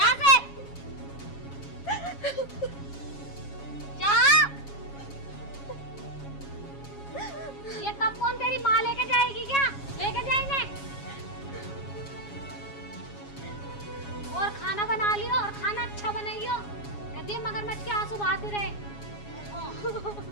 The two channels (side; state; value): right; late; 7.3 ms